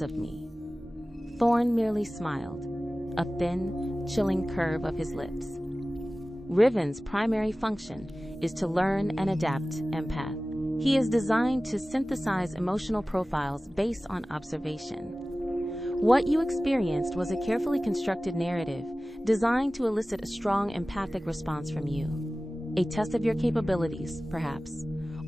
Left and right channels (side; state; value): both; normal; correlation 0.97